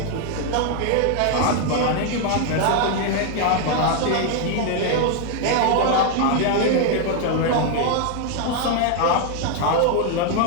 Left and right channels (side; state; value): both; different; correlation 0.01